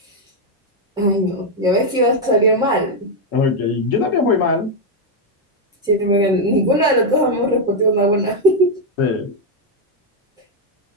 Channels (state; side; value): normal; both; correlation 0.02